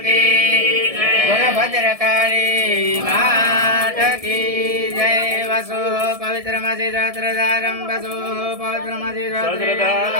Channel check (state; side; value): late; left; 1.7 ms